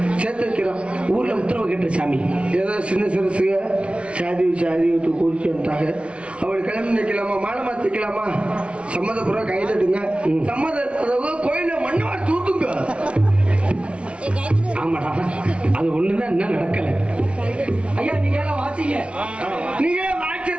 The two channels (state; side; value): late; left; 0.060 ms